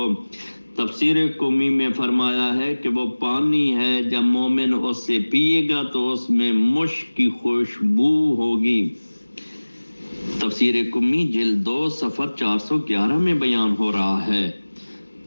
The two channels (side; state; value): both; inverted; correlation -1.00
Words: تفسیر قمی میں فرمایا ہے کہ وہ پانی ہے، جب مومن اس سے پیے گا تو اس میں مشک کی خوشبو ہوگی۔ تفسیر قمی جلد 2 صفحہ 411 میں بیان ہو رہا ہے۔